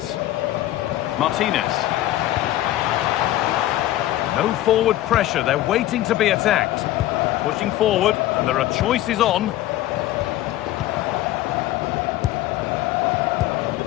Martinez. No forward pressure, they're waiting to be attacked. Pushing forward, and there are choices on.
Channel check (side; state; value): right; quieter; 14.6 dB